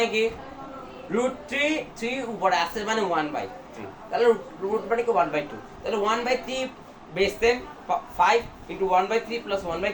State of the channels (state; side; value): identical; both; correlation 1.00